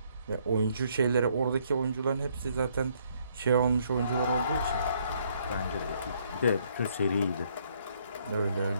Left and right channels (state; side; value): inverted; both; correlation -0.68